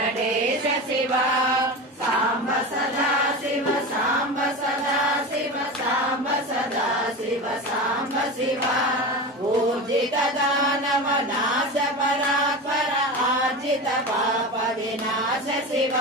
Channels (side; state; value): both; normal; correlation 0.26